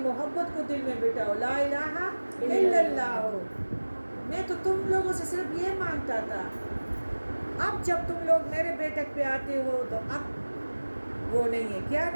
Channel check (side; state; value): both; inverted; correlation -1.00